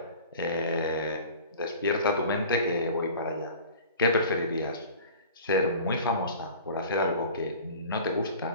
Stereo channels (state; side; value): inverted; both; correlation -0.42